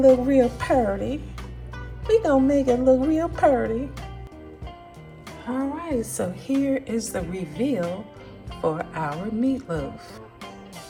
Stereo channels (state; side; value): identical; both; correlation 1.00